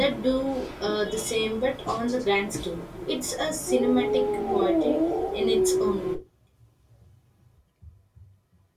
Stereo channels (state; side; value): identical; both; correlation 1.00